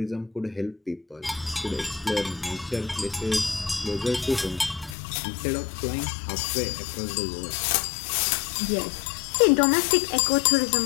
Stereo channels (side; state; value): right; drops out; at 5.0 s